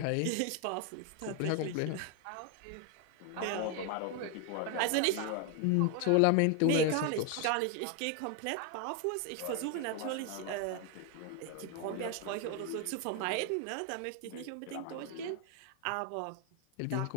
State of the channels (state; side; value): different; both; correlation 0.01